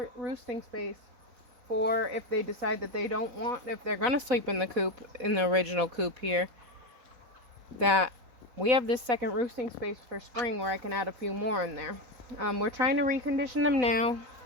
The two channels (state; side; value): late; left; 4.0 ms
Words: roosting space for if they decide that they don't want, if they're going to sleep in the coop, in the original coop here, that we have this second roosting space for spring where I can add a few more in there. We're trying to recondition them now,